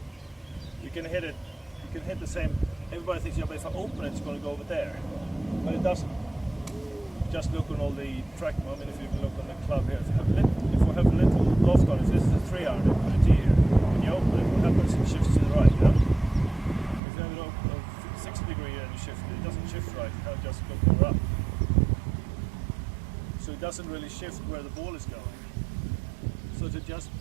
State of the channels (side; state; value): left; drops out; at 17.0 s